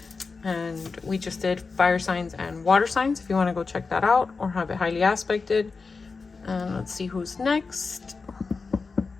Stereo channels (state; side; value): quieter; right; 4.5 dB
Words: And we just did fire signs and water signs if you want to go check that out or have it highly aspected. And let's see who's next.